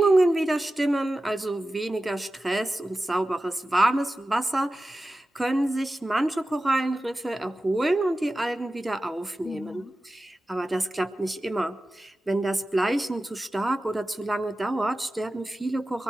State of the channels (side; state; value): both; normal; correlation 0.94